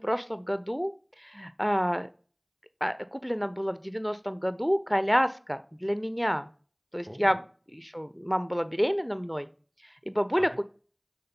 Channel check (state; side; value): identical; both; correlation 1.00